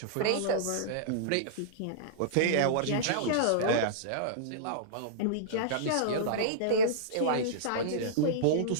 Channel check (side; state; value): both; different; correlation -0.03